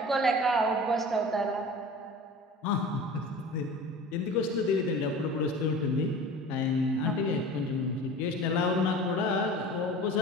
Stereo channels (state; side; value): normal; both; correlation 0.38